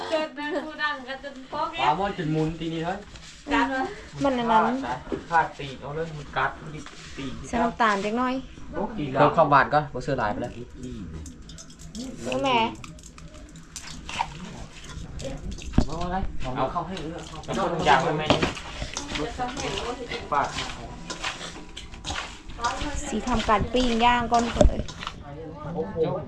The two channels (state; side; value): identical; both; correlation 1.00